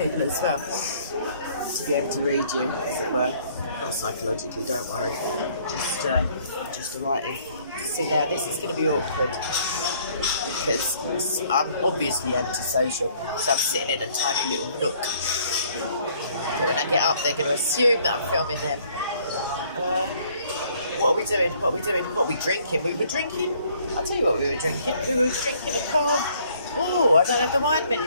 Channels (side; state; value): both; inverted; correlation -0.61